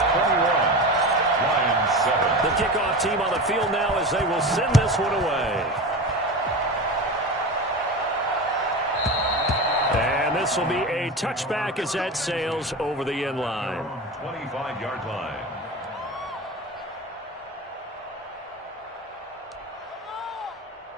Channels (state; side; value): normal; both; correlation 0.27